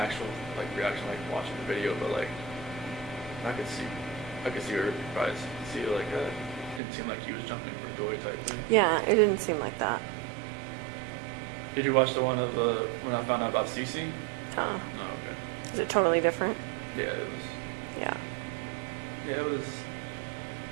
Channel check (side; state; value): left; drops out; at 6.8 s